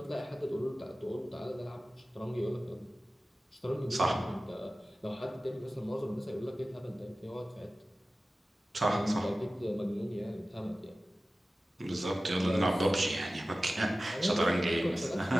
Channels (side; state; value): both; normal; correlation 0.96